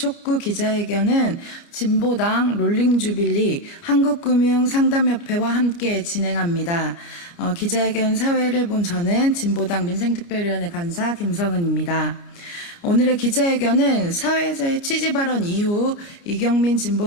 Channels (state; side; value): late; right; 28 ms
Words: 기자회견은 진보당 롤링주빌리 한국금융상담협회와 함께 진행합니다. 기자회견 사회를 본 저는 진보당 민생특별위원회 간사 김성은입니다. 오늘의 기자회견은 사회에서의 취지 발언 이후 이경민